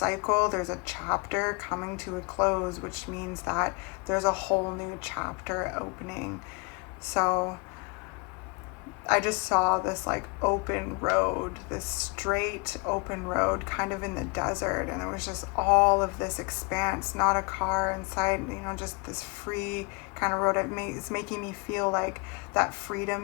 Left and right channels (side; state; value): right; quieter; 30.5 dB